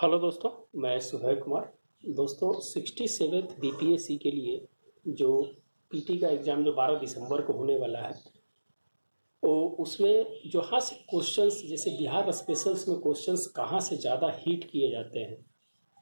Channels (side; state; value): both; inverted; correlation -1.00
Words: Hello दोस्तों, मैं सुभय कुमार। दोस्तों 67th बीपीएससी के लिए जो पीटी का एग्ज़ाम जो 12 दिसंबर को होने वाला है, वो उसमें जहाँ से क्वेश्चंस जैसे बिहार स्पेशल्स में क्वेश्चंस कहाँ से ज़्यादा हिट किए जाते हैं